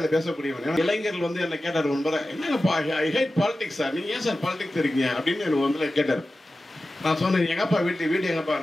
பேசக்கூடியவன். இளைஞர்கள் வந்து என்ன கேட்டார் முன்பரை, என்னங்கப்பா ஐ ஹேட் பாலிடிக்ஸ் சார், நீங்கள் ஏன் சார் பாலிடிக்ஸ் இருக்கீங்க அப்படின்னு எனக்கு வந்து கேட்டார். நான் சொன்னேன், எங்கப்பா வீடு எங்கப்பா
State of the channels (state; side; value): normal; both; correlation 0.94